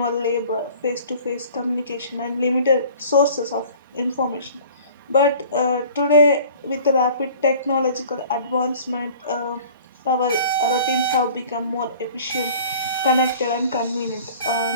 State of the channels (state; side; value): inverted; both; correlation -0.47